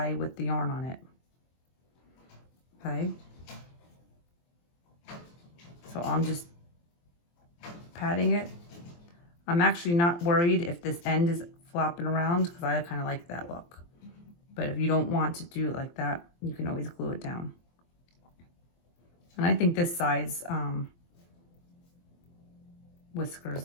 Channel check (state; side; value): late; right; 23 ms